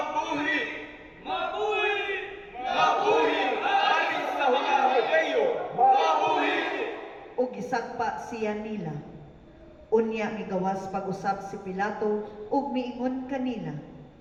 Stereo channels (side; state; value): both; identical; correlation 1.00